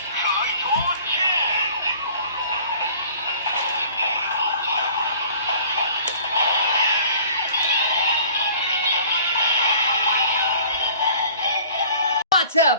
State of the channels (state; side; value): inverted; both; correlation -0.50